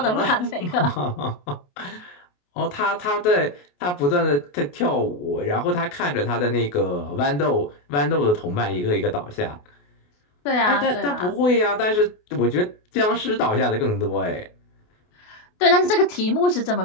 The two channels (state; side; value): late; right; 28 ms